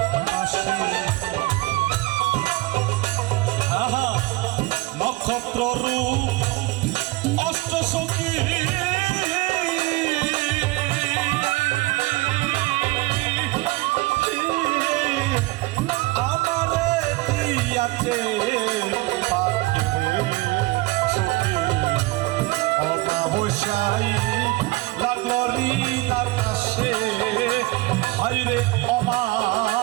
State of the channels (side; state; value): left; quieter; 21.5 dB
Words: আহা নক্ষত্র রূপ অষ্ট সখী আমারে দিয়াছে অমাবস্যায় লাগলো ঋণ আকাশে, হাইরে